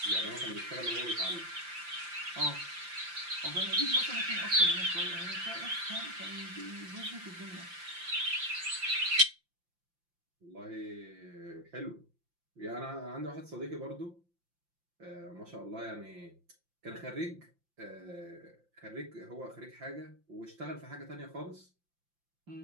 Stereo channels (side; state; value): left; late; 5.8 ms